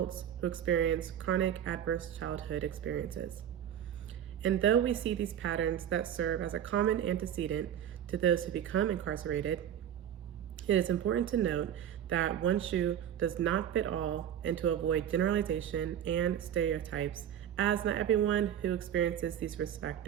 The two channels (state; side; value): quieter; left; 10.0 dB